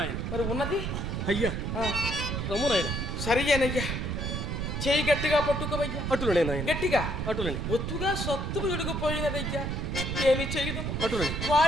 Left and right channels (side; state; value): right; noise; rumble, 2 dB below the sound